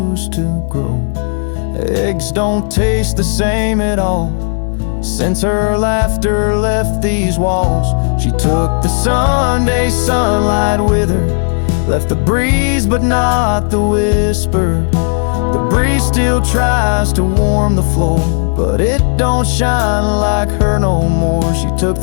to grow. Eggs don't taste the same at all since her laughter left these walls. She took the Sunday sunlight with her, left the breeze but not the whisper. The breeze still tries to warm the floor, but it don't shine like her no more. She took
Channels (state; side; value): silent; right; digital silence